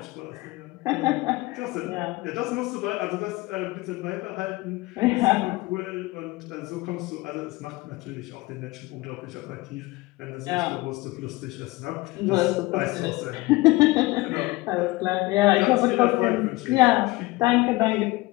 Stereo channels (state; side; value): quieter; right; 21.2 dB